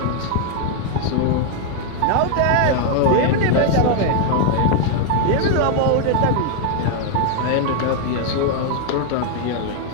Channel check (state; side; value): different; both; correlation 0.00